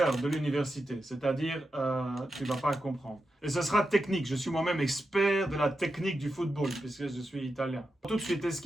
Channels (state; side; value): normal; both; correlation 0.89